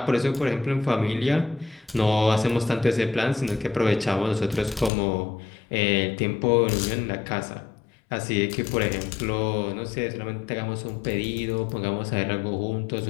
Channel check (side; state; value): right; drops out; at 4.9 s